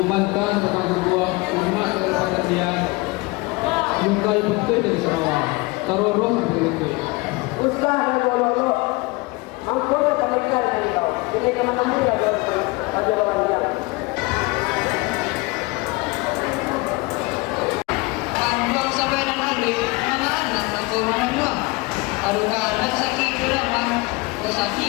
tentang sebuah umat kepada dia. Lungkai betul dari Sarawak. Taroroh betul. Usaha bolong-bolong. Angkor panikal dari kau. Ini kemana dia ada orang dia. Anjuang sampai dan ahli, mana anak aku mana aduh anak sakit drama,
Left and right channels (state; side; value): quieter; right; 24.5 dB